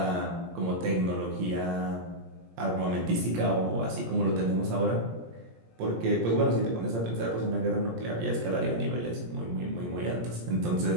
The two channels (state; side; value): late; left; 17 ms